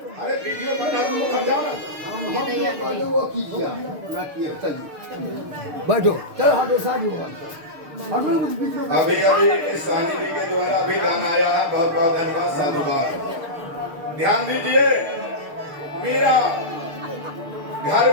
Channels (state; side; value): late; left; 6.7 ms